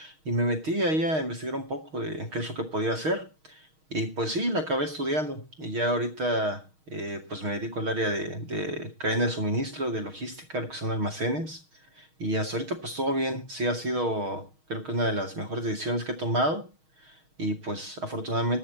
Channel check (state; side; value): late; left; 6.4 ms